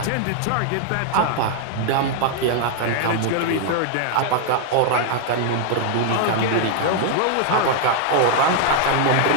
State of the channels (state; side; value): different; both; correlation 0.00